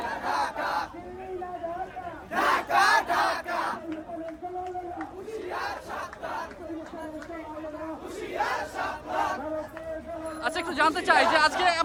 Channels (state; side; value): identical; both; correlation 1.00